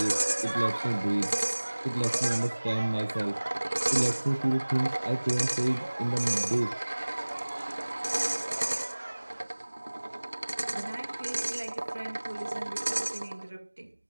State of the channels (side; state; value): both; inverted; correlation -1.00